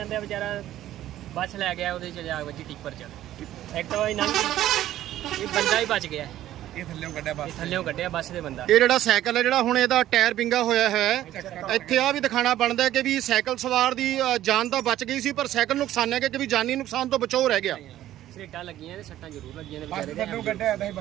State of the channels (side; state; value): left; quieter; 13.3 dB